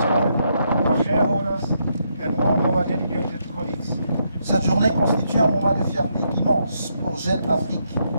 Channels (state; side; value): inverted; both; correlation -0.78